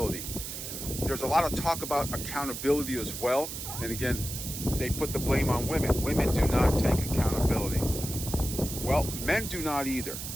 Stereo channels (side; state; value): right; noise; hiss, 7 dB below the sound